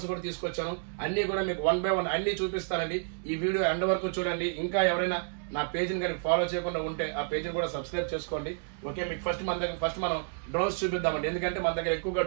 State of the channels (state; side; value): silent; left; digital silence